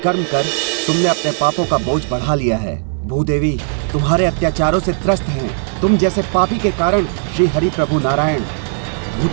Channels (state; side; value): silent; left; 58 dB below the other